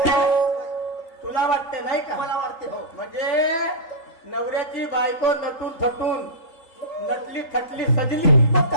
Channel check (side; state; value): right; late; 3.8 ms